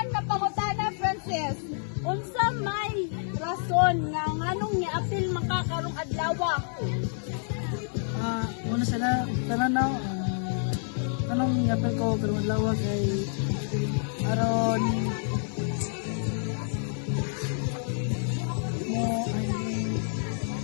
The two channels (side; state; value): right; silent; digital silence